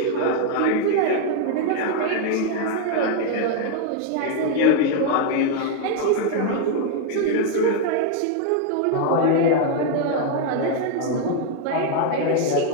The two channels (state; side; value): different; both; correlation 0.01